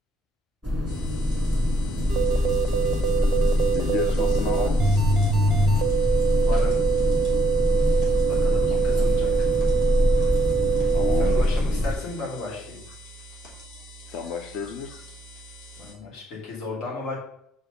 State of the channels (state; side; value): normal; both; correlation 0.72